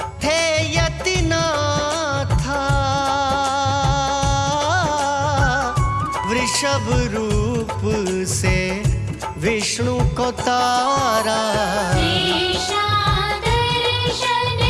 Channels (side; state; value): both; identical; correlation 1.00